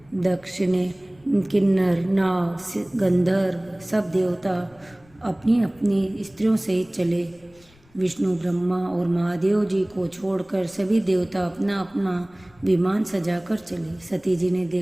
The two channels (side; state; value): left; noise; rumble, 29 dB below the sound